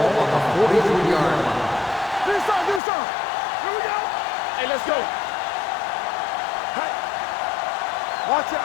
the 43-yard line. Do something. Do something. Here we go. Hey, let's go. Hey. Watch your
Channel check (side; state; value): right; drops out; at 2.8 s